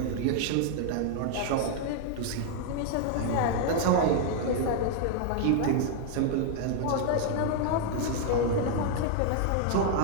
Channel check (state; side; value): different; both; correlation 0.00